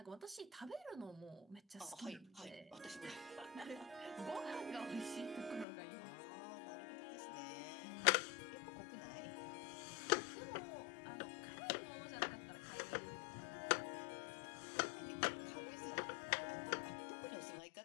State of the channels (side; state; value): right; drops out; at 5.7 s